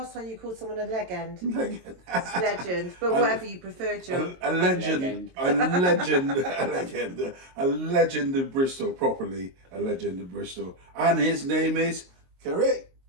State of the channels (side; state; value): left; late; 22 ms